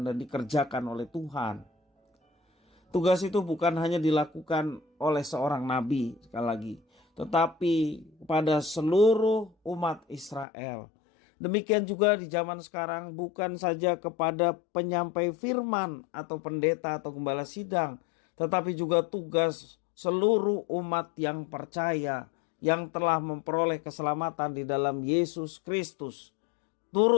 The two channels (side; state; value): right; drops out; at 10.5 s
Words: dan dikerjakan oleh Tuhan. Tugas itu bukan hanya dilakukan oleh seorang nabi, sekali lagi, tetapi kepada seluruh umat Israel. Demikian juga di zaman sekarang, bukan saja kepada penyampai firman atau pendeta atau gembala sidang, tetapi juga tugas seluruh umat yang percaya, yang telah memperoleh keselamatan di dalam Yesus Kristus,